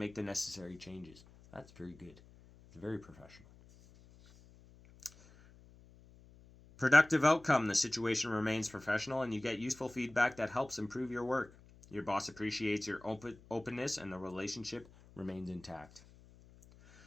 the necessary changes." That's very good. It's very professional. Productive outcome. The situation remains professional and you get useful feedback that helps improve your work. Your boss appreciates your openness and the relationship remains intact.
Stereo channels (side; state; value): left; noise; hum, 24 dB below the sound